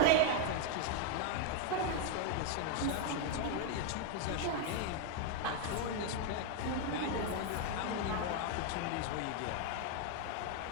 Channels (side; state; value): both; different; correlation 0.01